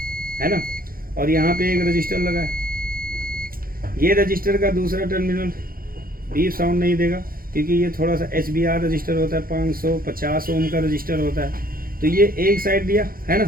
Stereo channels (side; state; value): left; late; 0.42 ms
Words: है ना। और यहाँ पे एक रजिस्टर लगा है, ये रजिस्टर का दूसरा टर्मिनल बीप साउंड नहीं देगा, क्योंकि ये थोड़ा सा HBR रजिस्टर होता है, 550 ओम का रजिस्टर होता है। तो ये एक साइड दिया, है